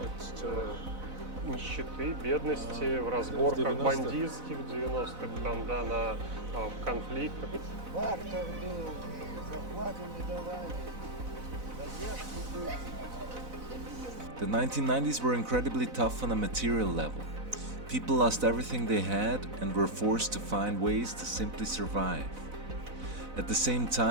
нищеты, бедности, в разборках бандитских в 90-х, там, да, на конфликтах. Бартер был, зарплаты не давали, задержки были. The 1990s were incredibly tough on a material level. People lost everything they had and were forced to find ways to simply survive. At the same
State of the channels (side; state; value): left; late; 4.0 ms